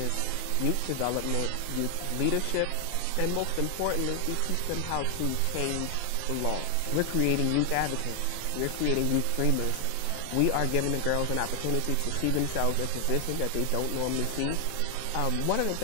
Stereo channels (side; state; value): both; different; correlation 0.00